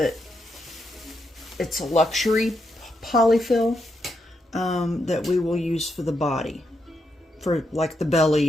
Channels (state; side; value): normal; both; correlation 0.82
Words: it's a luxury polyfill that we will use for the body, for like the